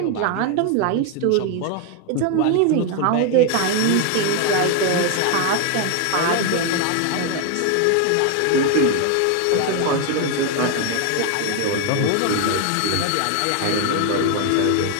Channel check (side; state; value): both; different; correlation 0.01